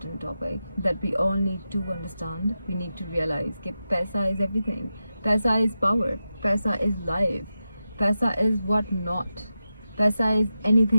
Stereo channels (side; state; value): both; inverted; correlation -0.91